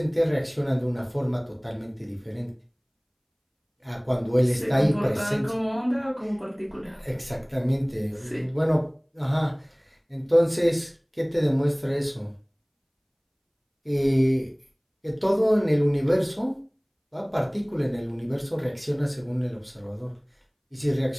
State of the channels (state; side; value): identical; both; correlation 1.00